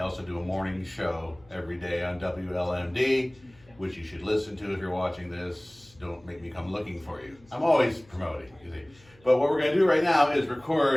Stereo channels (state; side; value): noise; left; hum, 28 dB below the sound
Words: do a morning show every day on WLMD, which you should listen to if you're watching this. Don't make me come looking for you. I'm always promoting, you see. But what we're going to do right now is